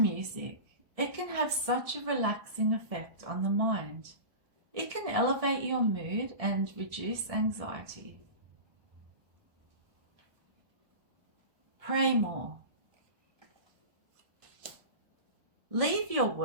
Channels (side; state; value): left; late; 1.6 ms